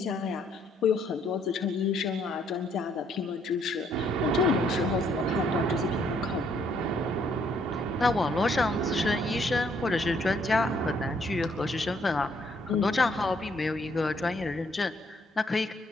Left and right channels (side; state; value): both; normal; correlation 0.68